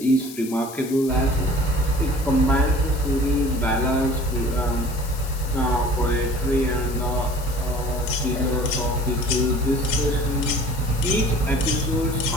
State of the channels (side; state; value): left; noise; hiss, 14 dB below the sound